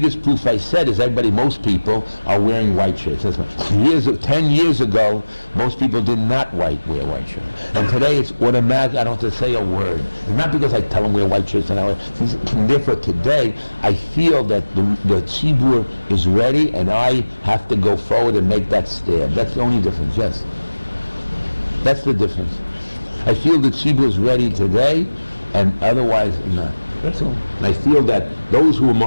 proof I said is most people are wearing white shirts. 10 years ago, most people did not wear white shirts. And today it's automatic, I don't have to say a word. It's not because I tell them wear white shirts, and therefore today I feel that the tzibur is ready, and I have to go forward and make that step. That's the only difference, yes. That's the difference. I feel the tzibur is ready today, and otherwise not. That's all. And I feel that those who are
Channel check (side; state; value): both; inverted; correlation -1.00